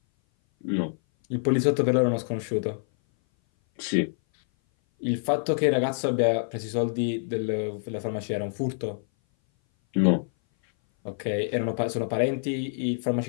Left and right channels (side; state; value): right; silent; 58 dB below the other